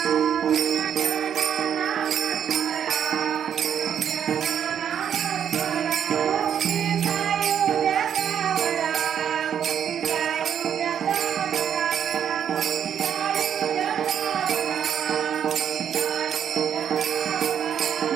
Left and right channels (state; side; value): quieter; left; 8.7 dB